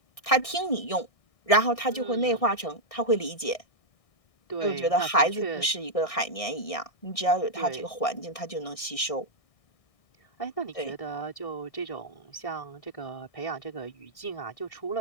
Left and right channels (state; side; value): late; right; 1.6 ms